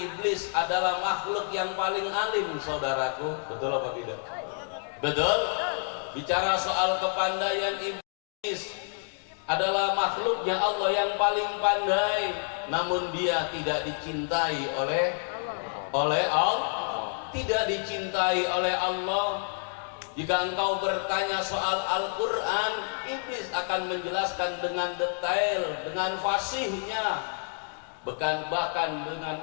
adalah makhluk yang paling alim, saudaraku. Betul apa tidak? Betul? Bicara soal kepandaian, iblis adalah makhluknya Allah yang paling pandai, namun dia tidak dicintai oleh Allah, tidak dicintai oleh Allah. Jika engkau bertanya soal Al-Quran, iblis akan menjelaskan dengan detail, dengan fasihnya, bahkan dengan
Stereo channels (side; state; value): right; silent; 59 dB below the other